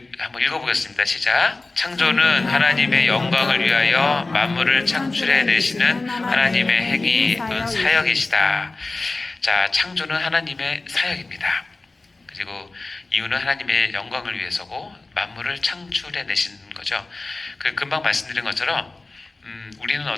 한번 읽어보겠습니다. 시작. 창조는 하나님의 영광을 위하여 만물을 창출해 내시는 하나님의 행위 또는 사역이시다. 자, 창조는 하나님의 사역입니다. 그리고 이유는 하나님의 영광을 위해서고 만물을 창출해 내시는 거죠. 금방 말씀드린 것처럼 우리는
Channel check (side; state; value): right; quieter; 3.3 dB